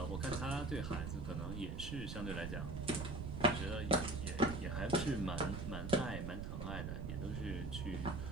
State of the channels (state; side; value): noise; right; rumble, 4 dB below the sound